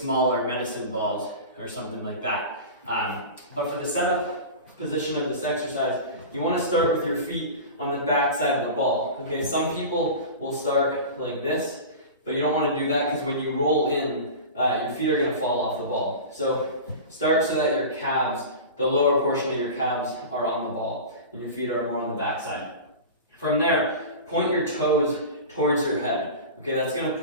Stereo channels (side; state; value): both; inverted; correlation -0.32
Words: medicine balls or something like that. But for the setup position of this exercise, you want to start with your feet on the back side of the ball. Okay, some people will start like this, but you don't want to do that because when you roll in, your feet are going to fall off the ball. So start so that your calves, the lower portion of your calves, are on the ball and your feet are more on the back side. From there, point your toes towards your head. Okay, that's going to